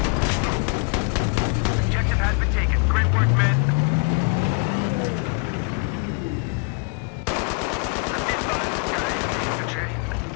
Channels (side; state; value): right; quieter; 32.7 dB